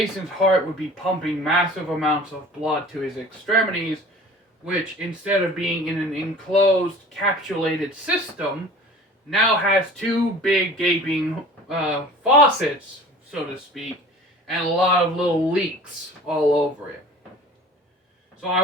heart would be pumping massive amounts of blood to his extremities, which, instead of being in an enclosed, capsulated system, now has two big gaping faucets, so to speak, and a lot of little leaks all over it. So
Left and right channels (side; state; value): both; normal; correlation 0.44